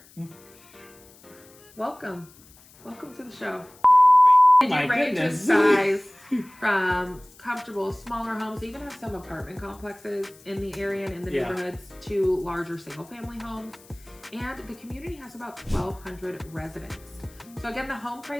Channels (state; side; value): noise; left; hiss, 25 dB below the sound